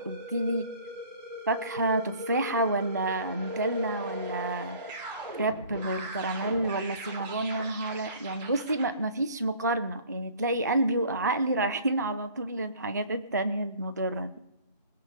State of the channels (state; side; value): inverted; both; correlation -0.51